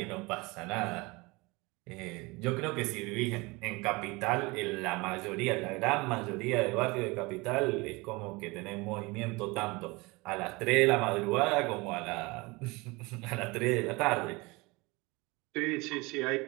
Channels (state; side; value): quieter; left; 24.7 dB